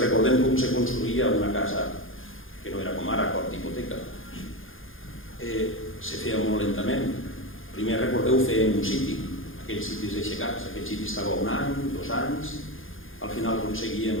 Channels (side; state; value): right; late; 0.59 ms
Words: recordem com se construïa una casa que no era com ara, cop d'hipoteca, se feia molt lentament. Primer, recordeu, fer en un siti, aquells sitis aixecats, aquell siti estava 1 any, 2 anys, al final aconseguíem